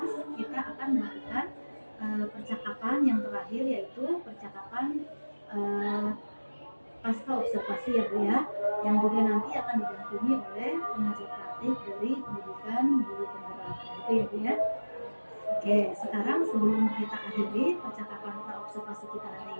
kita akan melakukan percakapan yang terakhir, yaitu percakapan pasca observasi ya Bu ya, yang juga nanti akan didampingi oleh pengajar praktik dari pendidikan guru penggerak. Gitu ya Bu ya. Oke, sekarang sebelum kita akhiri percakapan observasi kita hari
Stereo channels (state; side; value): inverted; both; correlation -1.00